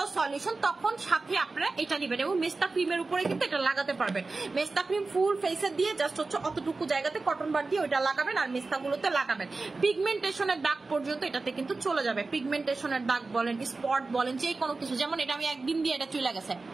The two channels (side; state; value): left; quieter; 3.7 dB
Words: সলিউশন, তখন সাথে আপনারা এটা নিবেন এবং মেস্তা ক্রিমের উপরে কিন্তু এটা লাগাতে পারবেন। মেস্তা ক্রিম ফুল ফেসে দিয়ে জাস্ট হচ্ছে অতটুকু জায়গাতে কটন বার দিয়ে ওইটা লাগাবেন আর মেস্তাগুলোতে লাগাবেন। পিগমেন্টেশনের দাগ পর্যন্ত এটাতে কিন্তু চলে যাবে। পিগমেন্টেশনের দাগ বলেন, স্পট বলেন, যে কোনো কিছু, যেমন এটা আমি একদিন দিয়ে এটা চলে গেছে,